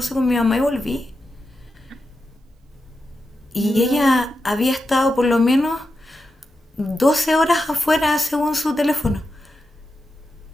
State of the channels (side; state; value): both; normal; correlation 0.89